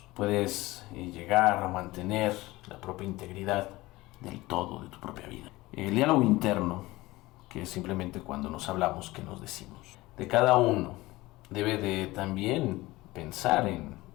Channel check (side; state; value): right; quieter; 19.6 dB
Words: puedes llegar a mantener la propia integridad del todo, de tu propia vida. El diálogo interno, que es simplemente cuando nos hablamos, que nos decimos. De cada uno debe de también pensar en